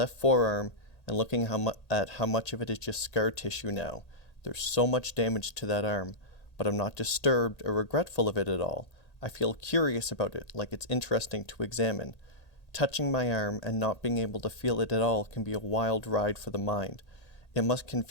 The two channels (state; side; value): late; right; 1.8 ms